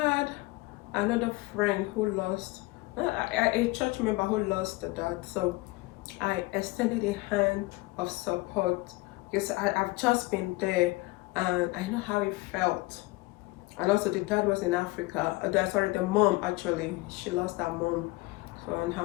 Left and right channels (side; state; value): right; quieter; 22.1 dB